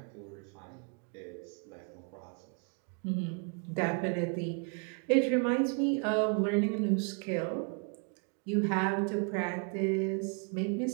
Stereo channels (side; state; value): left; quieter; 37.6 dB